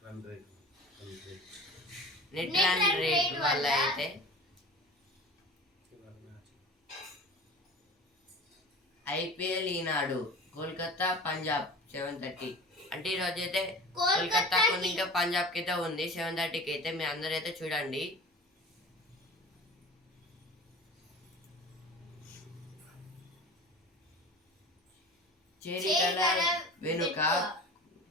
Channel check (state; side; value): normal; both; correlation 0.38